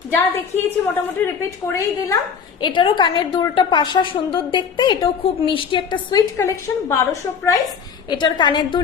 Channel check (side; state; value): right; quieter; 6.6 dB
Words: যা দেখিয়েছি মোটামুটি রিপিট করেই দিলাম। এটারও কানের দুলটা পাশা সুন্দর দেখতে, এটাও খুব মিষ্টি একটা সুইট কালেকশন। 1200 প্রাইস এটার কানের দুল,